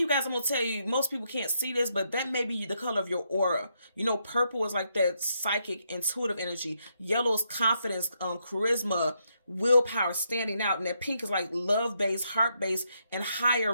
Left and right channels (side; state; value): both; inverted; correlation -0.78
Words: you guys, I'm going to tell you, most people can't see this, but that may be the color of your aura. You know, purple is like that psychic, intuitive energy. Yellow is confidence, charisma, willpower, standing out. And that pink is like love-based, heart-based, and higher